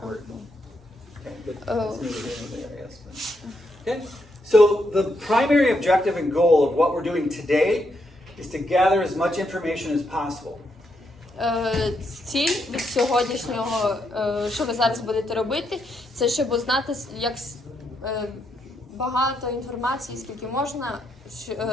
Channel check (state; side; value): normal; both; correlation 0.79